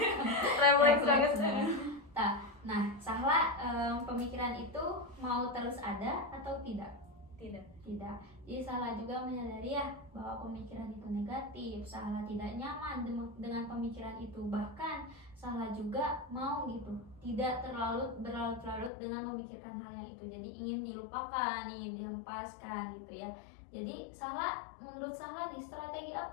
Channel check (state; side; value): drops out; right; at 18.9 s